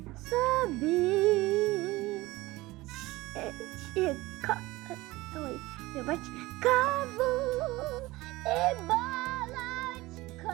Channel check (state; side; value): quieter; left; 19.8 dB